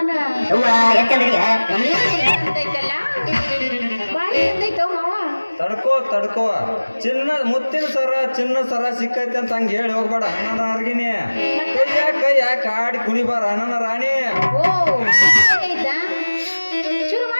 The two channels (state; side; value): inverted; both; correlation -1.00